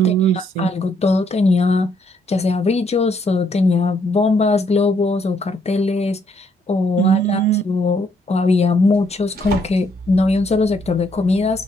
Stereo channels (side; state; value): both; normal; correlation 0.71